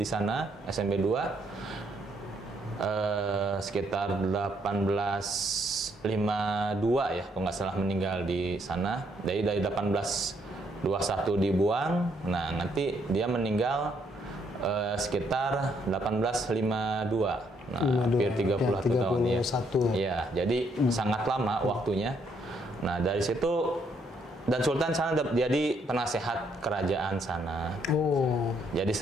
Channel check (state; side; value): normal; both; correlation 0.71